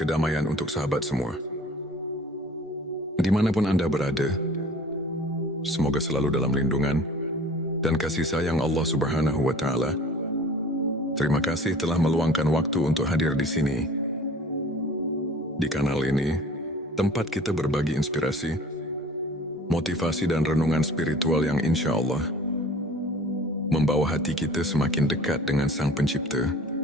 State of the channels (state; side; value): normal; both; correlation 0.46